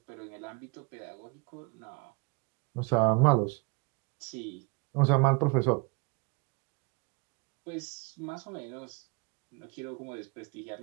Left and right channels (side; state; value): left; quieter; 29.2 dB